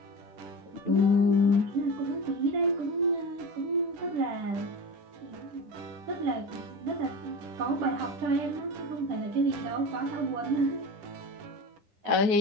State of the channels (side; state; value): left; late; 10 ms